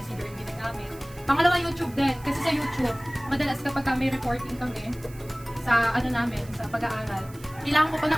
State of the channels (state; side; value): noise; right; hiss, 22 dB below the sound